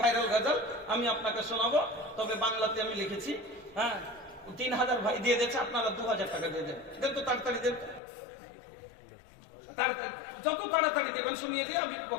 ভাইরাল গজল আমি আপনাকে শোনাবো, তবে বাংলাতে আমি লিখেছি। হ্যাঁ, 3000 ভাই দিয়ে দিয়েছে, আপনারা 2000 টাকা দিয়ে দেন। দেন তো তাড়াতাড়ি দেন, যত তাড়াতাড়ি দেবেন শুনিয়ে দিয়ে আমি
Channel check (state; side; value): drops out; right; at 8.0 s